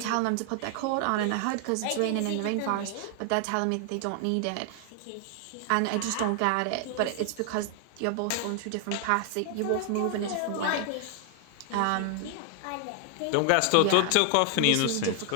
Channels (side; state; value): both; different; correlation 0.00